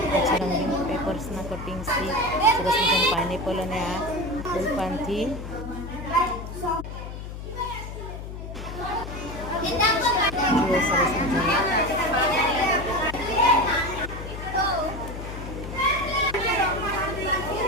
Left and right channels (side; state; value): left; noise; hum, 9 dB below the sound